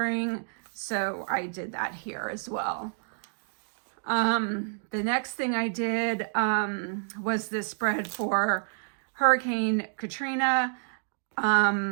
so I did that here as well. The next thing I did was this spread for Hurricane Katrina.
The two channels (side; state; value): left; silent; digital silence